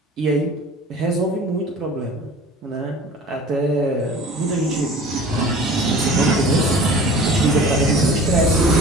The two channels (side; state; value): both; normal; correlation 0.43